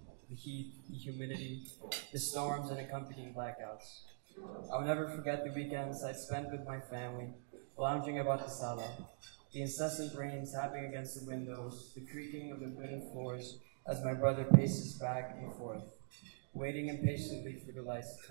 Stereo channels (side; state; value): left; silent; digital silence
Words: the heat, the humidity, the storms and accompanying blackouts. I'll never forget the weekends I spent with my family, lounging about the sala, the incessant rain tapping against the windows, the creaking of the wooden floors as my brother paces back and forth, waiting impatiently for the lights to